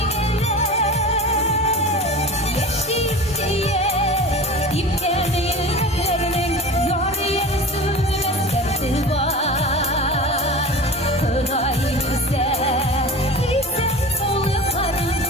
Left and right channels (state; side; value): normal; both; correlation 0.35